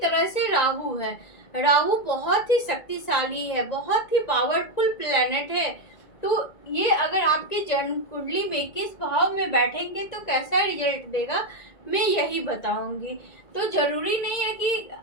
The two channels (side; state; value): right; late; 1.9 ms